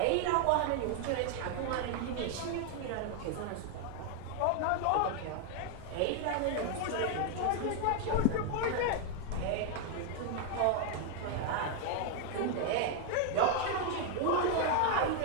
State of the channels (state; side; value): different; both; correlation 0.00